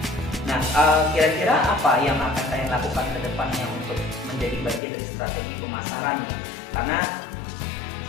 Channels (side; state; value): right; drops out; at 4.8 s